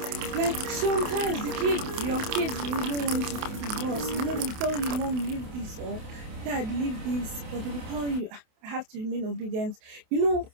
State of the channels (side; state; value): left; late; 28 ms